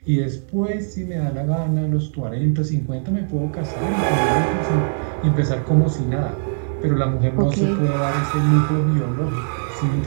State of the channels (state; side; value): silent; left; digital silence